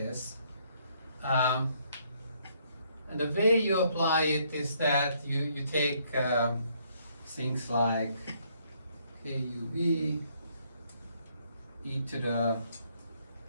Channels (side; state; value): both; inverted; correlation -0.69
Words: And the way you apply it is that you take things like KUV, e to the